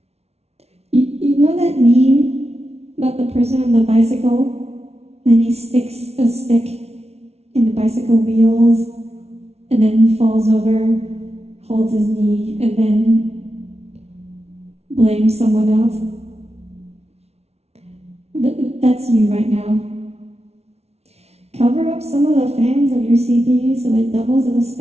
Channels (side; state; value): left; late; 0.31 ms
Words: You know that meme about the person on the bicycle? And he sticks a stick in the bicycle wheels and then falls over, holds his knee, and then blames someone else. That's you right now. Cover up some of the fans of your CPU so it doubles as a